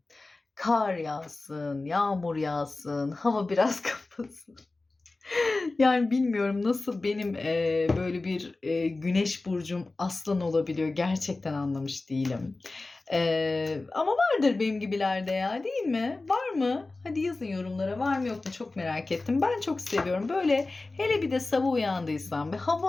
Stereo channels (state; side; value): quieter; right; 3.3 dB